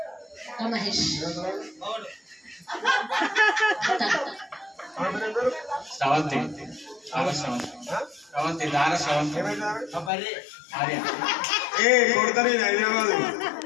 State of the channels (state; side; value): drops out; right; at 10.1 s